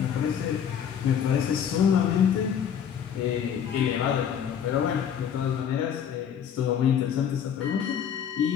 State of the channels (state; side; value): quieter; right; 8.5 dB